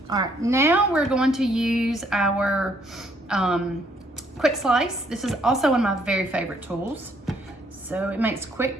All right, now we're going to use our quick slice. This is also one of my very favorite tools. So it makes quick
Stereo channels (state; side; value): normal; both; correlation 0.68